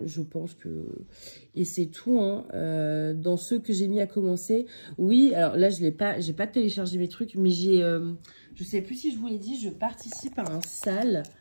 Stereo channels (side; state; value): both; inverted; correlation -1.00